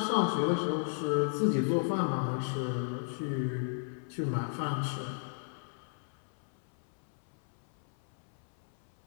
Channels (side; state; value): right; silent; 55 dB below the other